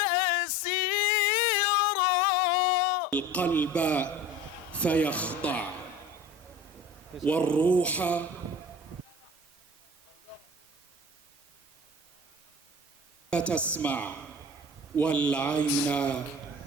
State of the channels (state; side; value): normal; both; correlation 0.39